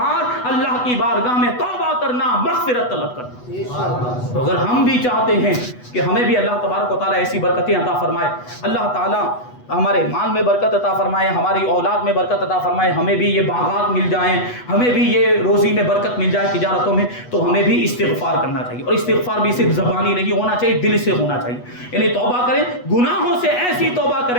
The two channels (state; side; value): late; right; 8.1 ms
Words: اللہ کی بارگاہ میں توبہ کرنا، مغفرت طلب کرنا۔ تو اگر ہم بھی چاہتے ہیں کہ ہمیں بھی اللہ تبارک و تعالیٰ ایسی برکتیں عطا فرمائے، اللہ تعالیٰ ہمارے مال میں برکت عطا فرمائے، ہماری اولاد میں برکت عطا فرمائے، ہمیں بھی یہ باغات مل جائیں، ہمیں بھی یہ روزی میں برکت مل جائے تجارتوں میں، تو ہمیں بھی استغفار کرنا چاہیے، اور استغفار بھی صرف زبانی نہیں ہونا چاہیے، دل سے ہونا چاہیے، یعنی توبہ کریں، گناہوں سے ایسی توبہ